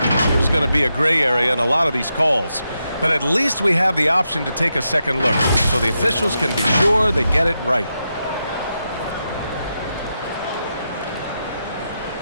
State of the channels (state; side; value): inverted; both; correlation -0.86